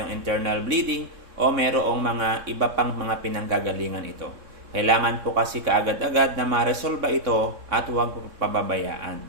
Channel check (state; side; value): late; left; 3.6 ms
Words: internal bleeding o merong mga iba pang mga pinanggagalingan ito. Kailangan po kasi kaagad-agad na ma-resolve ito at huwag pababayaan.